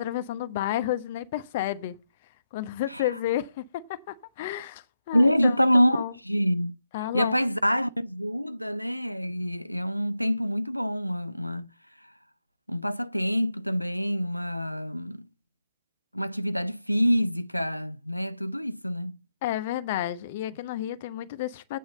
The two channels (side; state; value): both; inverted; correlation -0.87